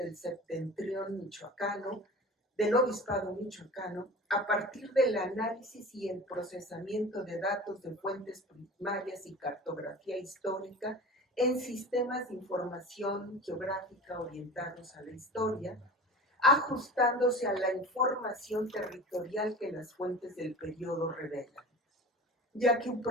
septentrión michoacano, del obispado michoacano, a partir del análisis y el procesamiento de datos de fuentes primarias y cartografía histórica en sistemas de información geográfica orientados a la historia, ajustándose a la información territorial que las fuentes del periodo revelan, ya que un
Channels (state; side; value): normal; both; correlation 0.36